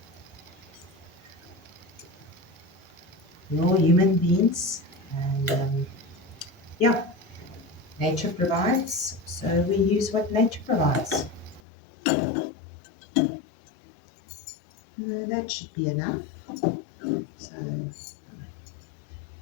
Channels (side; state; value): right; drops out; at 11.6 s